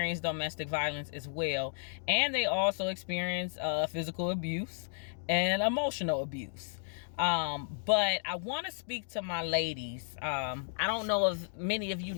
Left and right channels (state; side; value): silent; right; digital silence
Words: domestic violence as well, and they also experience physical abuse and emotional abuse. But I want to speak to my ladies. I don't know if many of you